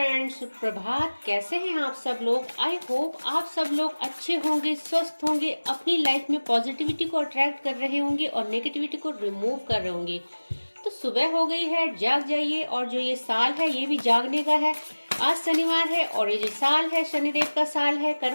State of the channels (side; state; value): both; inverted; correlation -1.00